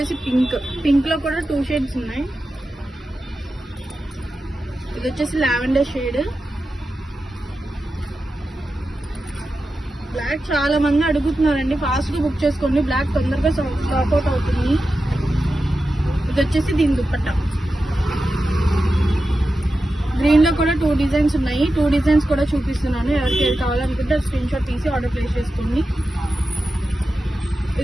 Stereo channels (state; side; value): normal; both; correlation 0.92